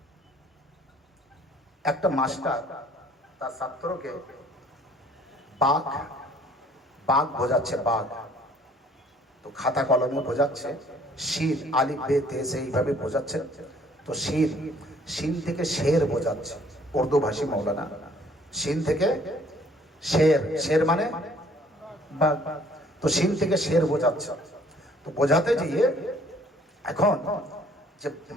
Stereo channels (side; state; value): both; normal; correlation 0.58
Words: একটা মাস্টার তার ছাত্রকে বাঘ বাঘ বোঝাচ্ছে, বাঘ, তো খাতা কলমে বোঝাচ্ছে, শির আলিফ বে তে সে এইভাবে বোঝাচ্ছে, তো শির শিন থেকে শের বোঝাচ্ছে, উর্দু ভাষী মৌলানা, শিন থেকে শের, শের মানে বাঘ, তো শিন থেকে শের বোঝাচ্ছে। তো বোঝাতে গিয়ে এখন যে